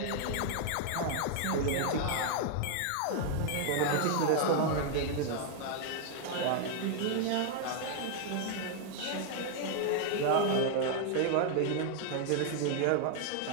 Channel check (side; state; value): both; different; correlation 0.00